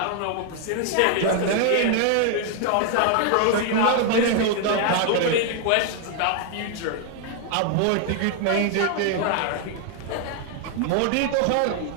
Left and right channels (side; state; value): both; different; correlation 0.00